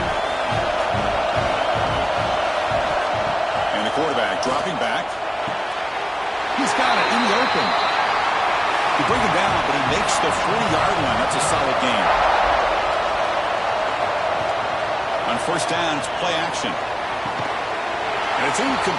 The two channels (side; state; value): both; identical; correlation 1.00